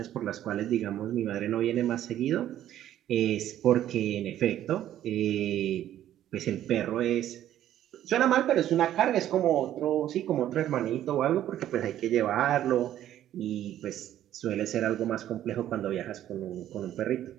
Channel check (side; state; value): left; quieter; 12.0 dB